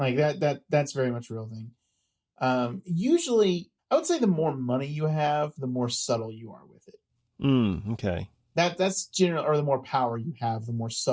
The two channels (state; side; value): identical; both; correlation 1.00